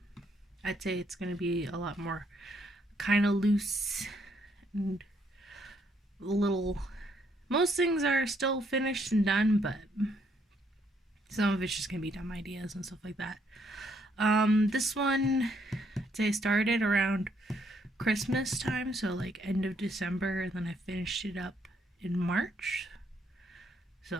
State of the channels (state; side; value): normal; both; correlation 0.71